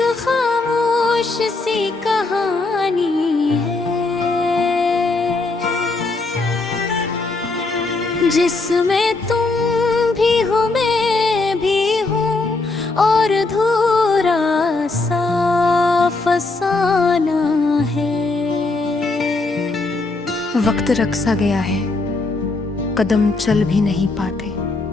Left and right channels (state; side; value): quieter; right; 3.5 dB